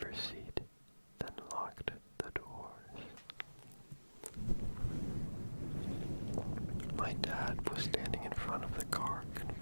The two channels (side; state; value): both; inverted; correlation -1.00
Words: seat, then locked the doors. My dad was standing in front of the car,